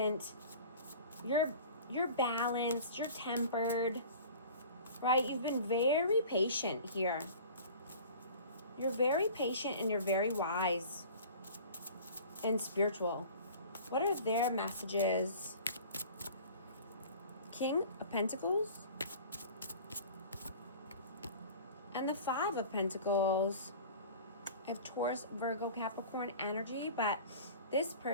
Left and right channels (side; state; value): both; inverted; correlation -0.42